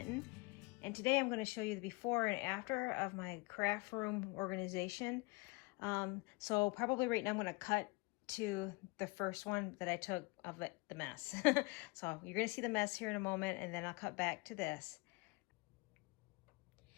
and today I'm going to show you the before and after of my craft room organization. So probably right now I'm going to cut to the first one that I took of the mess. So you're going to see the mess here in a moment, and then I'll cut back to this.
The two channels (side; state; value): right; quieter; 25.6 dB